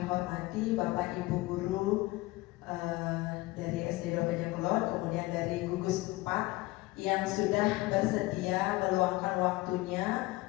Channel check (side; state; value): right; quieter; 20.5 dB